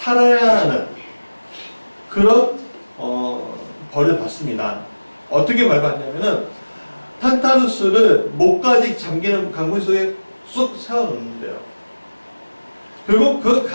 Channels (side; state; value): both; inverted; correlation -1.00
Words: 하는 그런 벌을 받습니다. 어떻게 벌 받냐면은 탄탈루스를 목까지 잠기는 강물 속에 쑥 세워놓는데요. 그리고 그